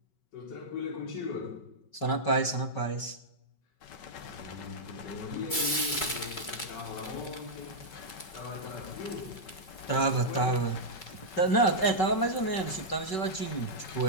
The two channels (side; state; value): right; late; 5.3 ms